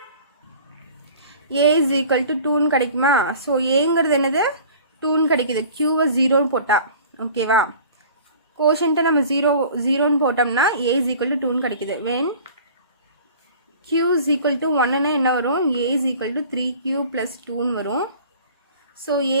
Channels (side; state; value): both; inverted; correlation -0.45